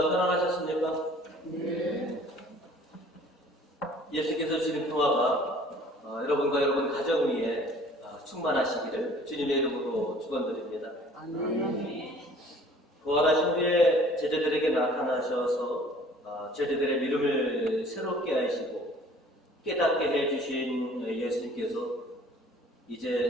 편안하셨습니까? 네. 예수께서 주신 평화가 여러분과 여러분 가정 위에 충만하시기를 주님의 이름으로 축원드립니다. 아멘. 부활하신 후에 제자들에게 나타나셔서 제자들의 믿음을 새롭게 하시고 깨닫게 해주신 예수님께서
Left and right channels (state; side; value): normal; both; correlation 0.52